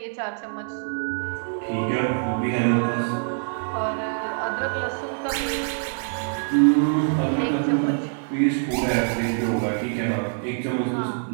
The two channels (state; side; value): silent; left; 62 dB below the other